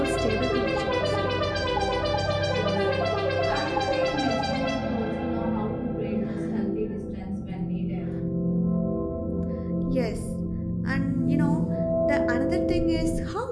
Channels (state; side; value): identical; both; correlation 1.00